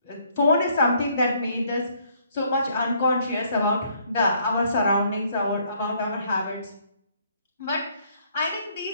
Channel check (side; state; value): both; inverted; correlation -0.66